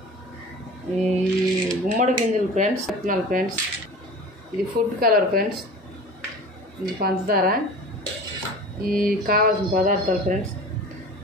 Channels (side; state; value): both; normal; correlation 0.38